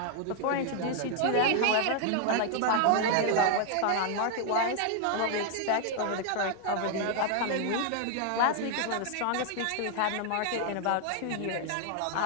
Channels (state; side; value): different; both; correlation 0.00